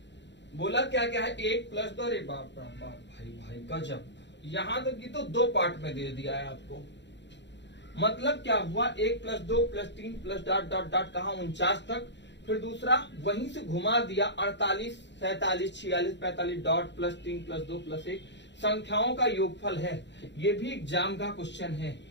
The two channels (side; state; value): right; late; 0.52 ms